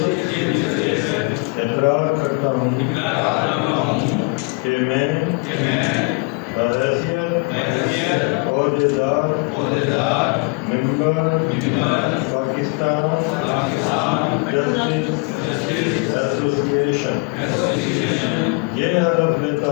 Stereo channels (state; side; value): quieter; right; 30.9 dB